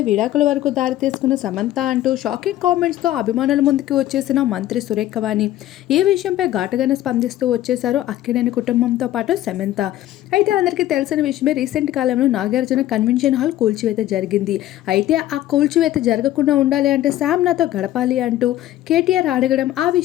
విడాకుల వరకు దారితీసుకున్న సమంత అంటూ షాకింగ్ కామెంట్స్తో అభిమానుల ముందుకు వచ్చేసిన మంత్రి సురేఖ వాణి ఈ విషయంపై ఘాటుగానే స్పందిస్తూ వచ్చేశారు అక్కినేని కుటుంబంతో పాటు సమంత. అయితే అందరికీ తెలిసిన విషయమే, రీసెంట్ కాలంలో నాగార్జున కన్వెన్షన్ హాల్ కూల్చివేత జరిగింది. అయితే ఆ కూల్చివేత జరగకుండా ఉండాలి అంటే శామ్ నాతో గడపాలి అంటూ కేటీఆర్ అడగడం, ఆ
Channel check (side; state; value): right; quieter; 13.9 dB